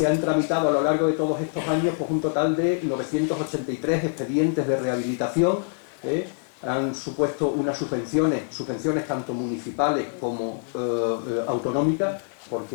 han tramitado a lo largo de todos estos años pues, un total de 983 expedientes de rehabilitación. Han supuesto unas subvenciones tanto municipales como autonómicas,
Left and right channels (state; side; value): silent; right; 62 dB below the other